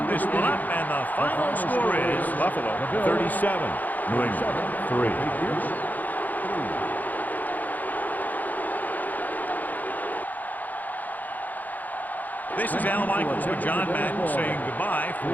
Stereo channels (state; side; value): late; right; 0.082 ms